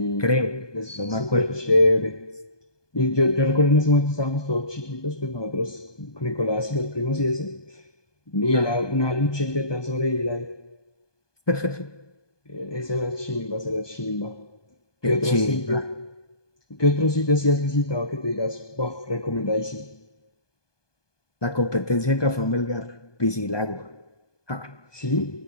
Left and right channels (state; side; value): late; right; 1.2 ms